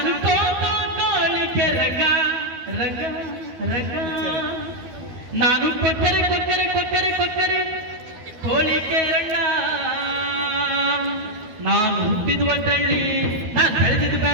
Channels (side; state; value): left; late; 12 ms